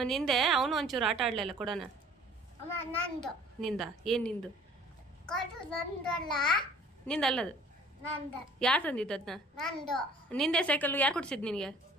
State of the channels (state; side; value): normal; both; correlation 0.53